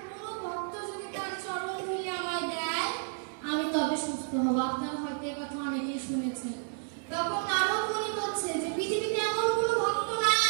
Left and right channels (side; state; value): left; silent; 57 dB below the other